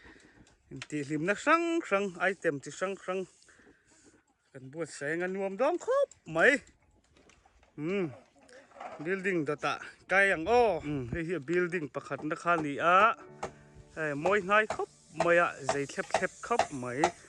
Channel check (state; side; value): identical; both; correlation 1.00